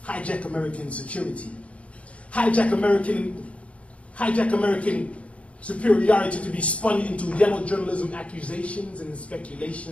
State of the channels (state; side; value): late; right; 0.063 ms